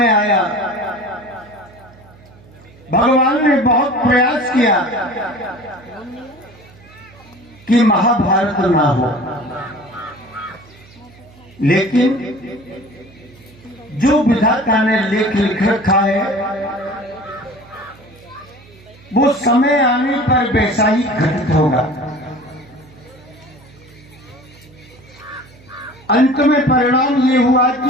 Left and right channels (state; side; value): noise; right; hum, 24 dB below the sound